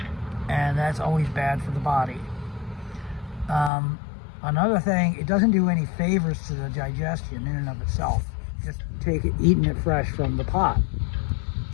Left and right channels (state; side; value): drops out; right; at 3.7 s